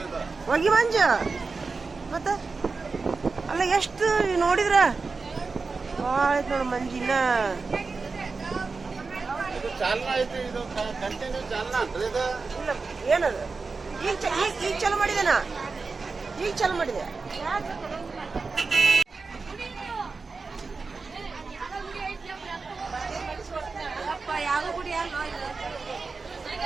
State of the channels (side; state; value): left; quieter; 4.3 dB